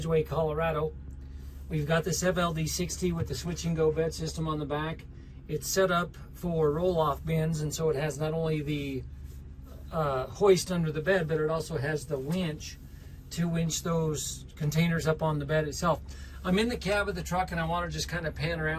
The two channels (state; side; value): identical; both; correlation 1.00